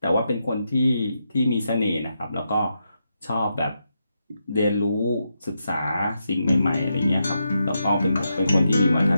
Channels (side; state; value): both; inverted; correlation -0.84